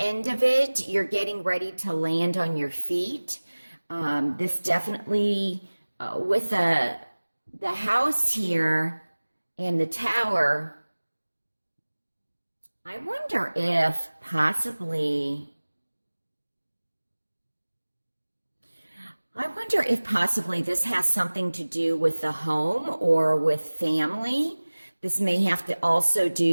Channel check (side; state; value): both; inverted; correlation -1.00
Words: of it, you're getting ready to land on your feet. This definitely, with the house here and the Tower, I wonder if possibly this has something to do with the home or with family. This may have to also